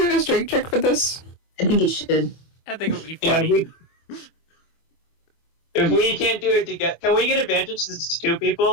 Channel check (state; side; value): late; right; 25 ms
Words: a strength check for this? I think you should. I think it would be Yeah, funny. if we can't do it together, can we get advantage since it's 2